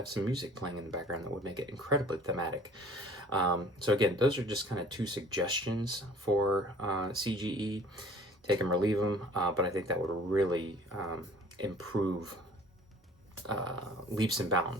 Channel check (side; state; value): both; normal; correlation 0.50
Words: some music playing in the background that would make it incredibly thematic. So again, those are just kind of 2 suggestions for CGE. Take them or leave them, but I think that would really improve leaps and